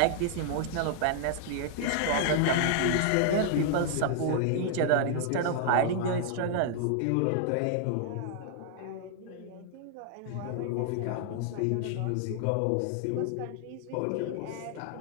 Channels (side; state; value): both; different; correlation -0.01